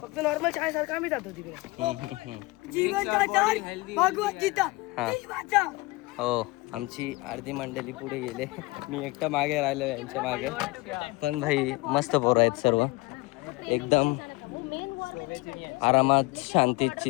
फक्त नॉर्मल शाळेसारखं आम्ही जातो तिकडे. जीवन भगवत गीता वाचा. हो, आमची अर्धी मंडळी पुढे गेले, मी एकटा मागे राहिलो यांच्या मागे. पण भाई मस्त पोरं आहेत सर्व, एकदम आरामात शांतीत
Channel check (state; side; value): quieter; right; 23.2 dB